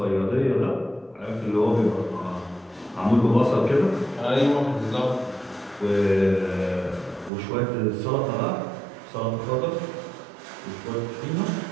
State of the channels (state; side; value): drops out; left; at 7.3 s